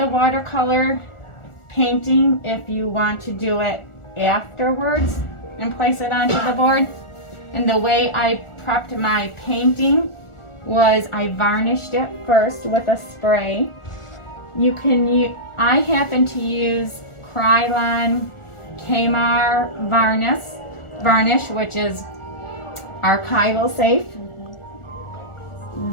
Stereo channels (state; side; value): late; right; 1.4 ms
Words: watercolor painting if you want to do it afterwards and place it onto the board. And the way I prepped my painting was I varnished it first with a spray. I happen to use Krylon Keil varnish, which is archival safe.